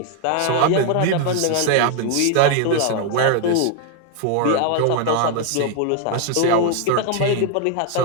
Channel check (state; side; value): different; both; correlation 0.00